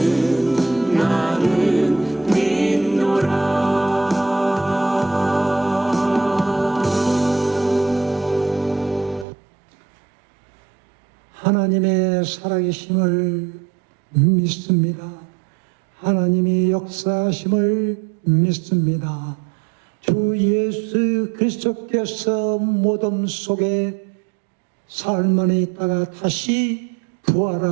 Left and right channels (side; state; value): left; drops out; at 9.2 s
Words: 믿노라. 하나님의 살아계심을 믿습니다. 하나님이 역사하심을 믿습니다. 주 예수 그리스도께서 무덤 속에 사흘 만에 있다가 다시